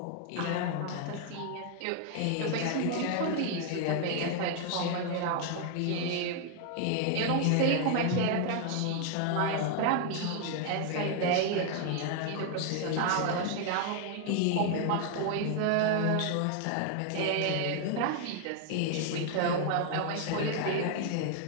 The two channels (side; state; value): both; different; correlation 0.00